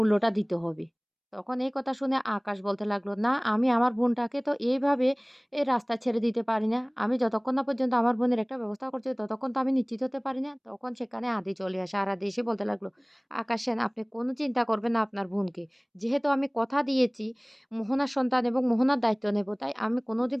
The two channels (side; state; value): both; identical; correlation 1.00